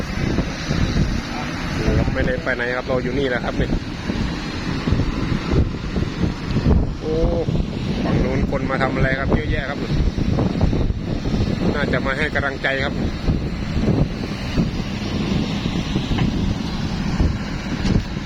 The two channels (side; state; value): both; identical; correlation 1.00